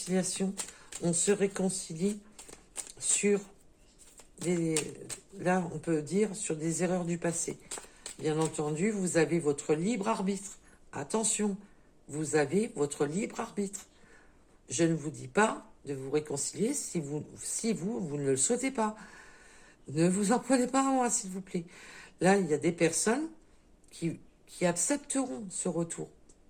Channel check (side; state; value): both; identical; correlation 1.00